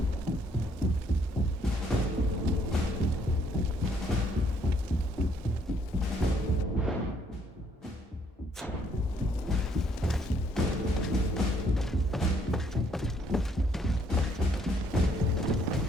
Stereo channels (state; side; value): normal; both; correlation 0.67